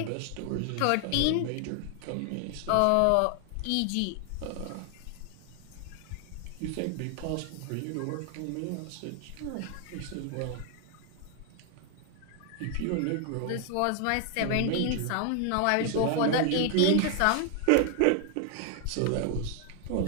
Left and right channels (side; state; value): both; different; correlation 0.00